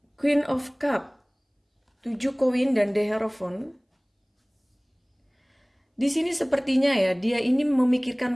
Queen of Cup, 7 koin dan The Hierophant. Di sini sepertinya ya, dia ini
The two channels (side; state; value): both; identical; correlation 1.00